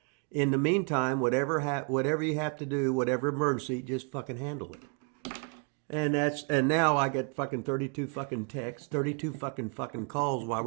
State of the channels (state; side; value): quieter; left; 35.0 dB